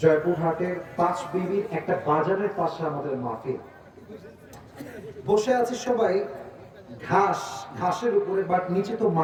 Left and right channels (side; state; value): both; identical; correlation 1.00